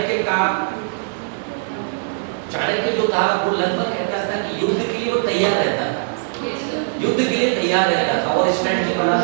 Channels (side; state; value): left; silent; 61 dB below the other